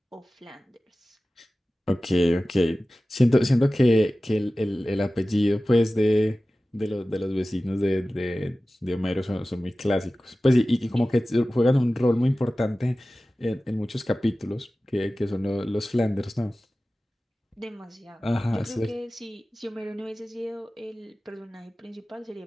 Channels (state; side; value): normal; both; correlation 0.96